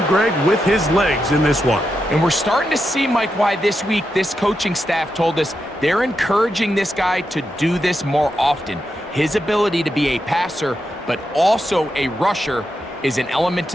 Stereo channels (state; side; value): normal; both; correlation 0.86